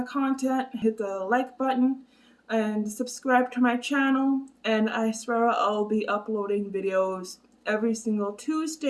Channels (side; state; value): both; identical; correlation 1.00